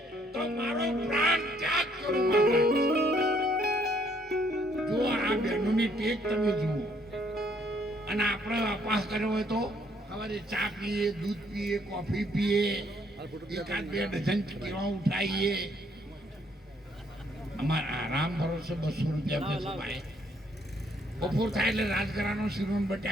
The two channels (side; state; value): both; normal; correlation 0.67